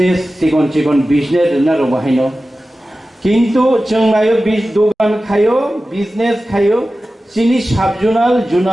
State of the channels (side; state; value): both; normal; correlation 0.95